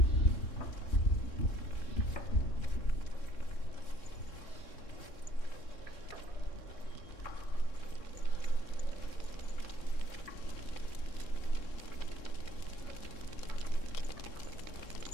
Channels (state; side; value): late; right; 3.6 ms